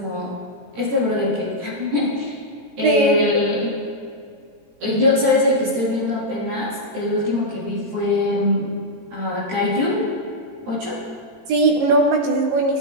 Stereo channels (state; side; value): late; left; 17 ms